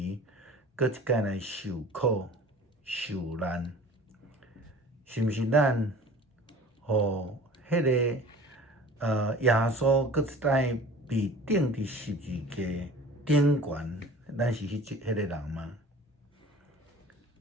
搁一摆来受苦、受难？是毋是咱？互迄个耶稣搁一摆被钉伫十字架顶悬，咱是迄个人吗？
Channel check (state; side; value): normal; both; correlation 0.43